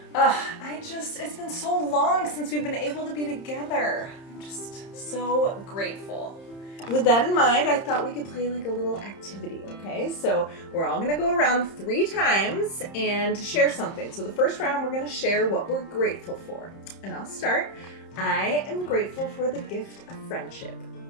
It's been so long since we've been able to be together. I'm just so grateful. With that in mind, I thought we could play like a little activity, okay? So we're all gonna go around 3 times and share something. So the first round, we're gonna share what we're grateful for. And I'll start. I am grateful for the gift of friendship.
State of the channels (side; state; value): right; late; 30 ms